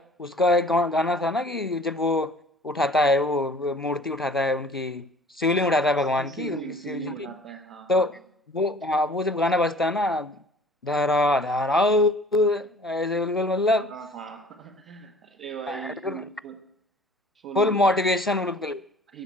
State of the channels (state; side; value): normal; both; correlation 0.50